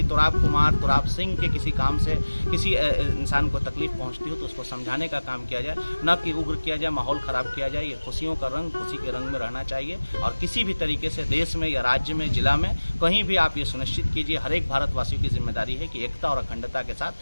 तुराब कुमार, तुराब सिंह के किसी काम से किसी इंसान को तकलीफ पहुँचती हो तो उसको समझाने का काम किया जाए, न कि उग्र किया जाए, माहौल ख़राब किया जाए। ये खुशियों का रंग खुशी के रंग में रहना चाहिए और किसी भी तरीके से देश में या राज्य में, जिला में कहीं भी आप ये सुनिश्चित कीजिए, हर एक भारतवासियों की जिम्मेदारी है कि एकता और अखंडता के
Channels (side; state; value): both; inverted; correlation -1.00